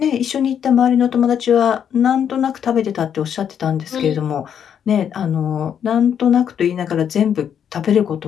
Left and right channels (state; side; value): quieter; right; 8.5 dB